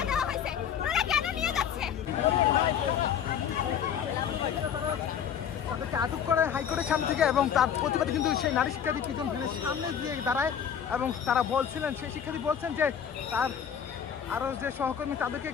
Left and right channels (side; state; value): right; quieter; 8.3 dB